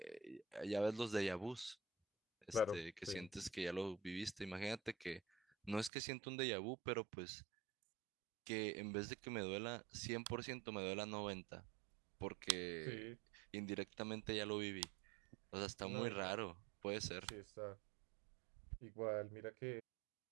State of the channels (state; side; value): drops out; left; at 5.9 s